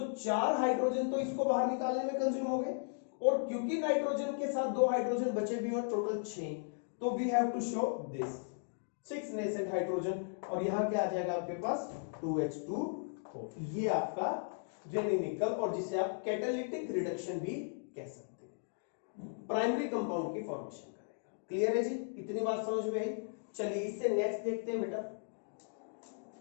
4 हाइड्रोजन तो इसको बाहर निकालने में कंज्यूम हो गए, और क्योंकि नाइट्रोजन के साथ 2 हाइड्रोजन बचे भी और टोटल 6, तो we have to show this 6 nascent hydrogen, और यहां क्या आ जाएगा आपके पास 2H2O, ये आपका रेनिनिकल, और जिसे आप कैटालिटिक रिडक्शन भी कह सकते हैं, प्राइमरी कंपाउंड की फॉर्मेशन करेगा। क्लियर है जी, इतनी बात समझ में आई। चलिए इससे नेक्स्ट देखते हैं बेटा,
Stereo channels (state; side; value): silent; right; digital silence